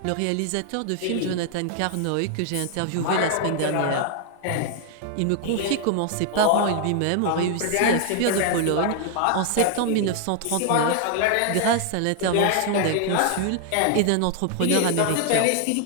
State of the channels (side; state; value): both; different; correlation 0.00